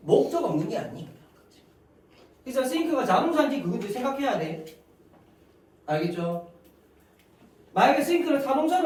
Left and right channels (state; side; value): identical; both; correlation 1.00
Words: 없는 게 아니야. 그래서 think가 자동사인지 그것도 생각해야 돼. 알겠죠? 만약에 think를